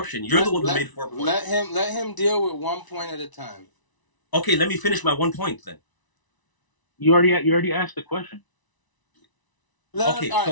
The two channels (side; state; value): right; late; 1.0 ms